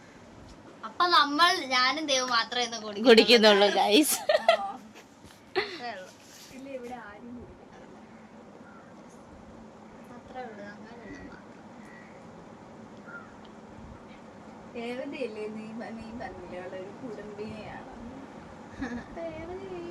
അപ്പൊ ഞാനും ദേവ് മാത്രമേ കുടിക്കുന്നുള്ളൂ ഗൈസ്. രേവതിയല്ലേ നീ പറഞ്ഞില്ലേ ഒരു കുടുംബിനെയാണ്.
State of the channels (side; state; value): both; identical; correlation 1.00